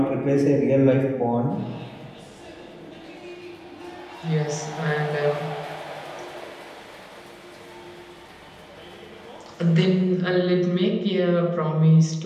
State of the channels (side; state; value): both; identical; correlation 1.00